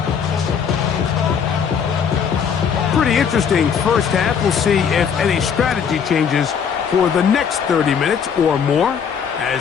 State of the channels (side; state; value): right; quieter; 7.1 dB